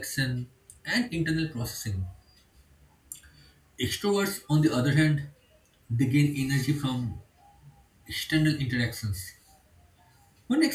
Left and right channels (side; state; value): both; identical; correlation 1.00